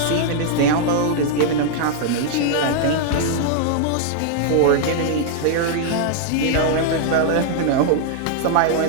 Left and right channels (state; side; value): different; both; correlation -0.01